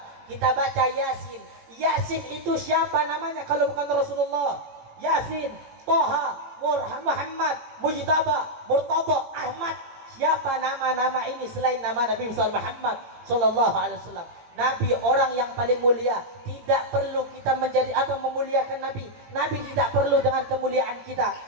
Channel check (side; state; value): left; late; 18 ms